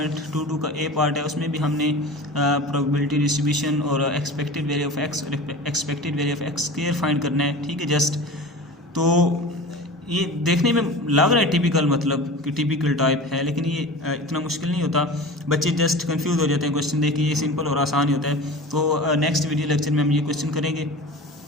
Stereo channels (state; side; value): normal; both; correlation 0.35